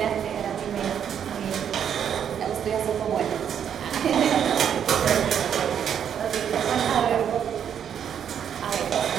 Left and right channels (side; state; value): left; quieter; 8.6 dB